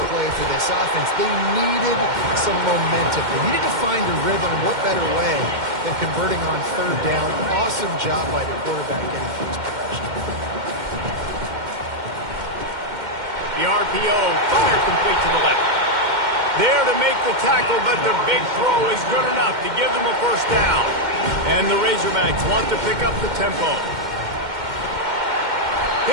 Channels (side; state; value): left; late; 2.1 ms